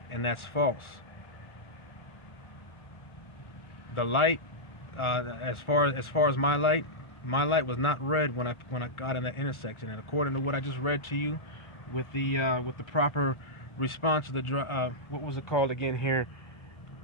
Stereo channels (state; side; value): late; right; 1.4 ms